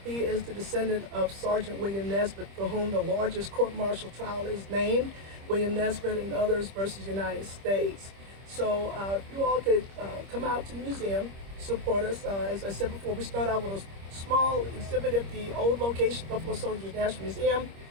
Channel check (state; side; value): late; left; 25 ms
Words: He is the descendant of Sergeant William Nesbitt, for whom the largest court-martial trial is named, William Nesbitt and others versus United States. So if you all could come out to the museum, support us. As I said before, we start out with a small exhibit at the old location, Buffalo Soldiers National Museum.